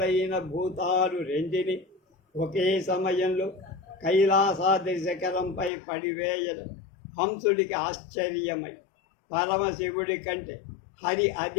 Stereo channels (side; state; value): right; drops out; at 5.7 s